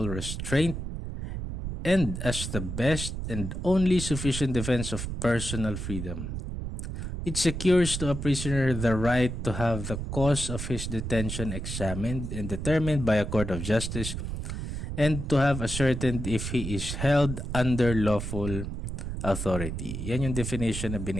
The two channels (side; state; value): right; noise; rumble, 5 dB below the sound